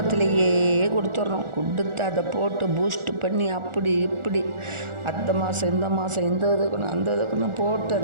கொடுத்து அதை போட்டு பூஸ்ட் பண்ணி அப்படி இப்படி அந்த மாதம் இந்த மாதம் இதுக்குன்னு அந்த இதுக்குன்னு போட்டு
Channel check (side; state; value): left; late; 1.4 ms